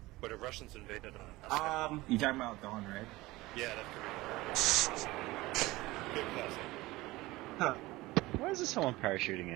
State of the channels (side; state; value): left; quieter; 19.6 dB